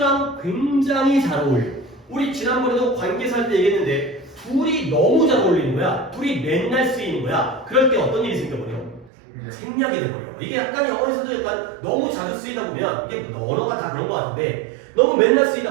굉장히 잘 어울려요. 우리 지난번에도 관계사 할 때 얘기했는데 둘이 너무 잘 어울리는 거야. 둘이 맨날 쓰이는 거야. 그럴 때 어떤 일이 생겨버려? 생략이 돼버려. 이게 약간 영어에서도 약간 너무 자주 쓰이다 보면 이게 언어가 다 그런 것 같은데 너무 맨날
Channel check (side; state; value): left; drops out; at 9.1 s